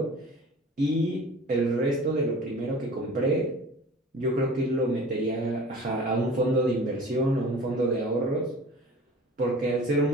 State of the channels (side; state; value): both; normal; correlation 0.42